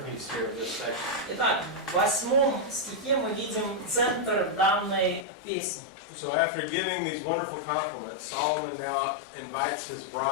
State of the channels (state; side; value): drops out; right; at 5.2 s